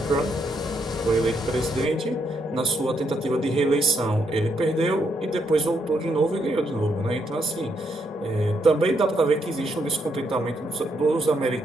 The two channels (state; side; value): normal; both; correlation 0.76